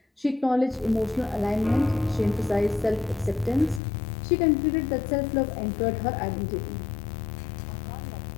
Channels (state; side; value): drops out; right; at 3.8 s